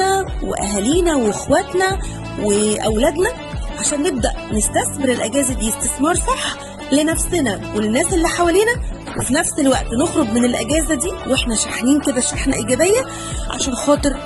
وأهالينا وإخواتنا وأولادنا عشان نبدأ نستثمر الأجازة دي استثمار صح لنفسنا وللناس اللي حوالينا، وفي نفس الوقت نخرج من الأجازة دي وإحنا شاحنين كده شحنة إيجابية عشان خاطر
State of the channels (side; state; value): both; identical; correlation 1.00